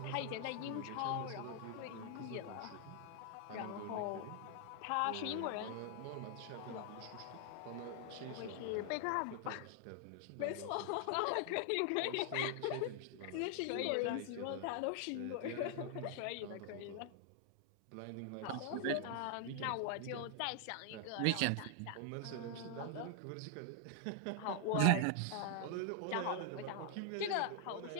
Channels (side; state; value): both; different; correlation 0.00